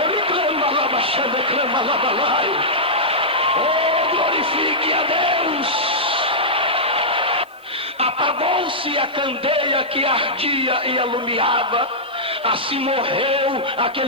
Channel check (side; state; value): right; noise; hiss, 30 dB below the sound